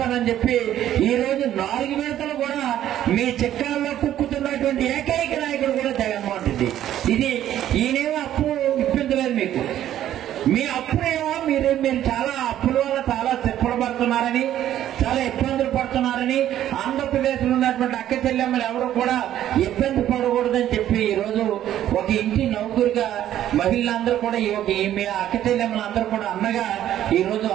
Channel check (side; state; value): left; quieter; 11.9 dB